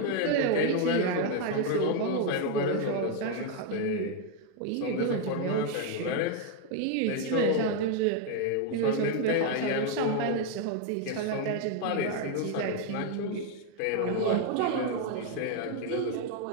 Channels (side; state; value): both; different; correlation 0.01